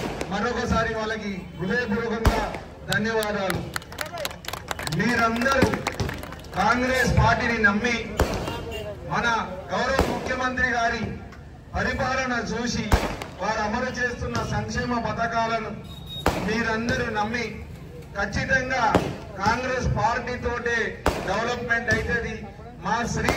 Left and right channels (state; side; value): identical; both; correlation 1.00